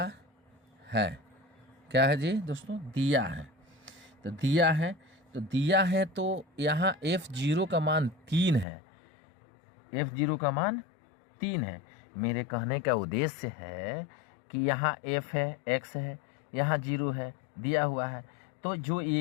है। क्या है जी दोस्तों, दिया है। तो दिया है तो यहाँ f0 का मान 3 है, f0 का मान 3 है। मेरे कहने का उद्देश्य है कि यहाँ f है, x है, यहाँ 0 है, दिया हुआ है। तो जो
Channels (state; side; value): drops out; right; at 8.7 s